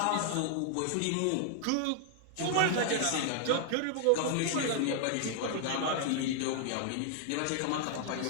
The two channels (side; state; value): both; different; correlation 0.00